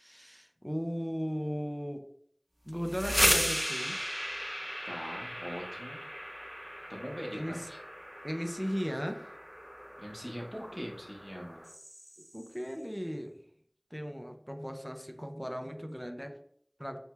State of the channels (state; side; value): identical; both; correlation 1.00